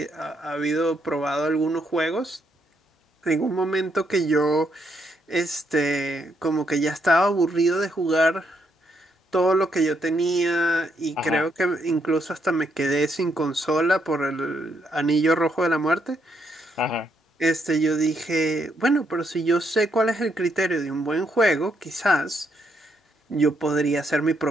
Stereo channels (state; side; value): normal; both; correlation 0.76